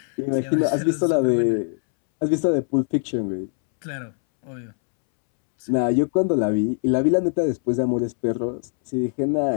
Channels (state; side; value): silent; right; 64 dB below the other